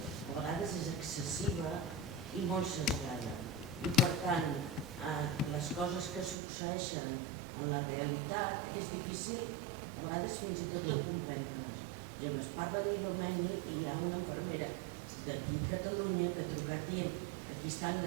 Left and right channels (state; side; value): drops out; left; at 6.4 s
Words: vegades és excessiva i molt sesgada. I per tant, les coses que succeeixen en la realitat és difícil a vegades fins i tot de comprendre-les. Ja es parla d'Ilomeni i hi ha una infermera d'aquí a Catalunya que ha trucat dient aquí estan